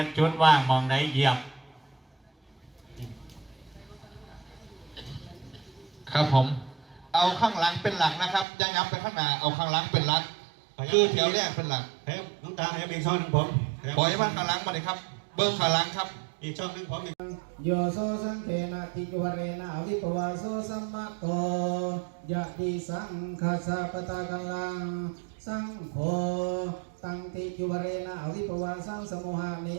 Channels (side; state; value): left; drops out; at 8.5 s